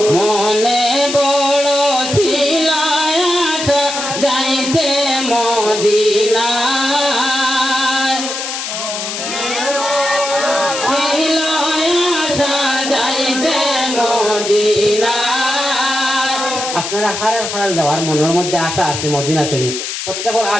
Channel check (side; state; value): left; noise; hiss, 5 dB below the sound